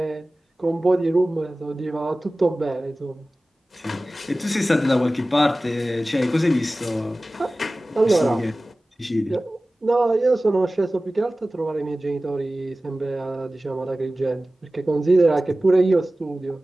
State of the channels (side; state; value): both; normal; correlation 0.97